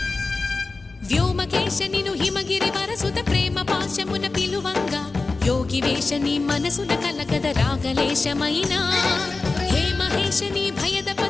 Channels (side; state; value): right; quieter; 3.7 dB